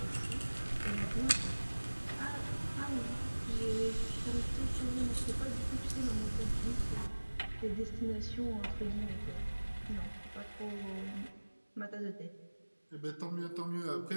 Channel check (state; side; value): inverted; both; correlation -1.00